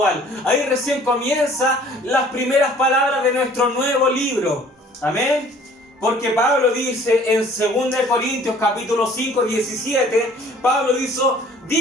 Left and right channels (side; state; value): both; normal; correlation 0.54